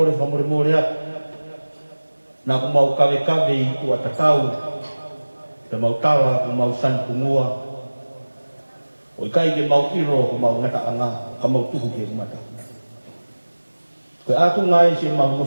whamore more atu, nā ko mau kawe kawe i tua tatau, te mau tala ko mau sanpungua, o i kai ke mau iro ko mau ngata anga, ka mau tuhu ke umata. Koe atu ngai se mau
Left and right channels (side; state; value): both; inverted; correlation -1.00